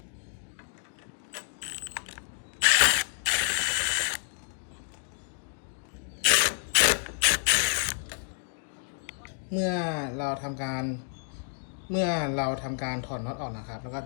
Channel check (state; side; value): silent; right; digital silence